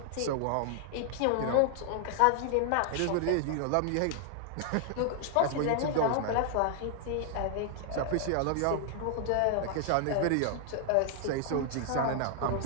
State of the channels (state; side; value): different; both; correlation 0.00